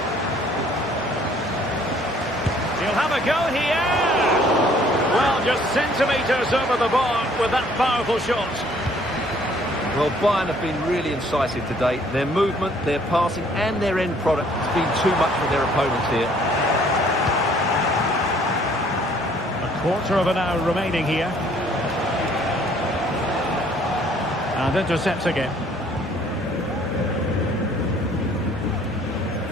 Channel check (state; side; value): normal; both; correlation 0.60